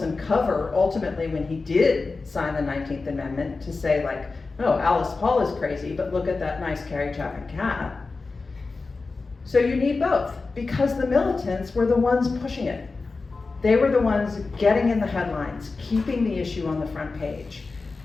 cover, ultimately, when he did sign the 19th Amendment, to say, like, oh, Alice Paul is crazy, but look at that nice Carrie Chapman cat. So you need both, because the militants were the ones pushing it. They were the ones getting in the headlines, keeping the issue on the front page.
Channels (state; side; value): quieter; right; 4.0 dB